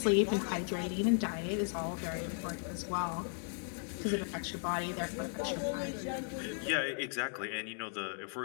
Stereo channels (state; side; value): silent; right; 54 dB below the other